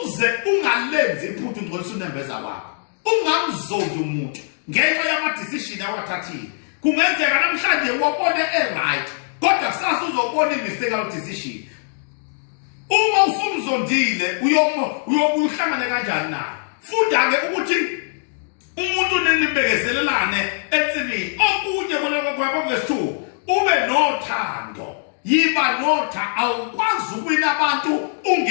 uze ungalenzi iphuthu ngcolisa unembeza wakho ungamzondi umuntu ngenxa yama decision awathathile kungenzeka namhlanje wabone right kodwa kusasa uzobona imistake awu decision uma usumzondile uyobuhlangane kanjani naye funda ke ukuthi umuntu ninibekezelelane ensimini okunye koloko kwa verse 2 ube nothando yiba notha awukwazi ukuwina abantu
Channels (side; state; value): right; silent; digital silence